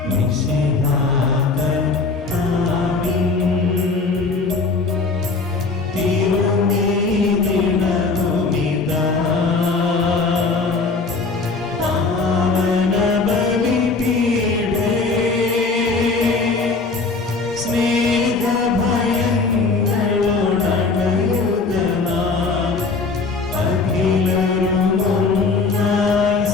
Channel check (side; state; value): right; quieter; 4.0 dB